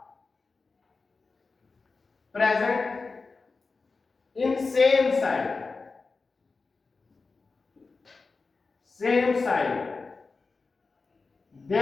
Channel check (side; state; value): right; quieter; 4.2 dB